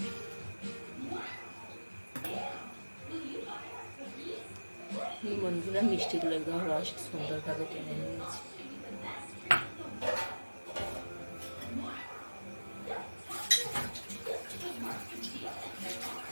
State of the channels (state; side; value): inverted; both; correlation -1.00